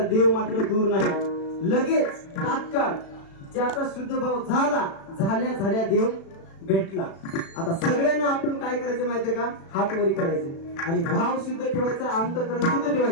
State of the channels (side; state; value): right; late; 36 ms